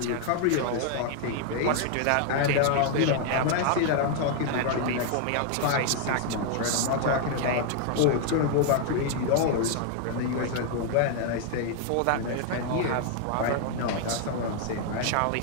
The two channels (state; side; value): different; both; correlation 0.00